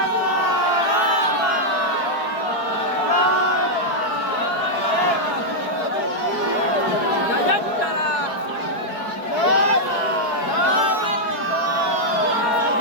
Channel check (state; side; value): late; right; 4.5 ms